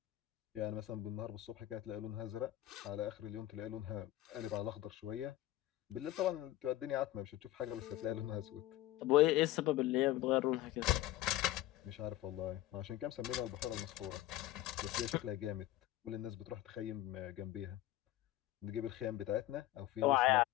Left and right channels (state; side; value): quieter; right; 14.9 dB